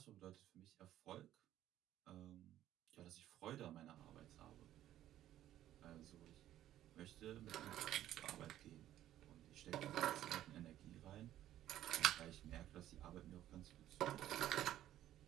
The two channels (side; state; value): left; quieter; 12.7 dB